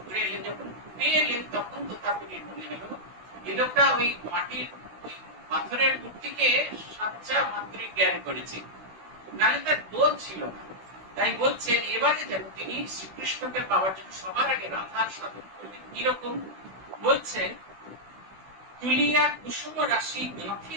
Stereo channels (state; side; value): late; left; 16 ms